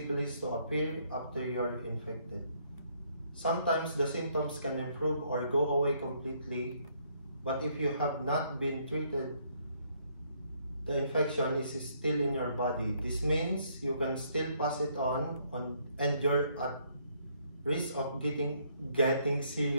to appear after you are infected. Sometimes the symptoms can improve or go away completely, but if you have not been treated, the infection is still in your body. This means you can still pass it on and you're at risk of getting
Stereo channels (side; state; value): both; inverted; correlation -0.69